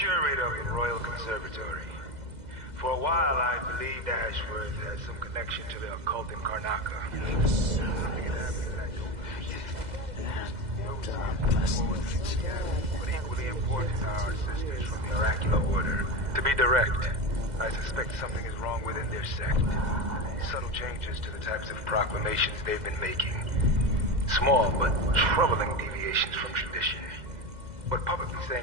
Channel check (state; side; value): late; left; 2.0 ms